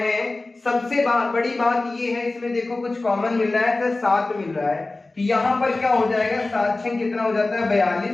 सबसे बड़ी बात ये है, इसमें देखो कुछ कॉमन मिल रहा है, तो 7 मिल रहा है। तो यहाँ पर क्या हो जाएगा, 7 6 कितना हो जाता है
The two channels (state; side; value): quieter; right; 3.2 dB